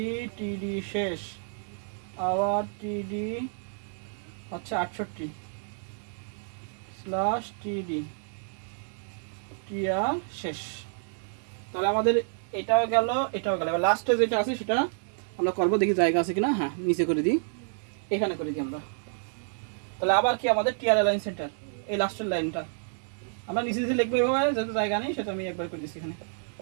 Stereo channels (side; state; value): left; silent; digital silence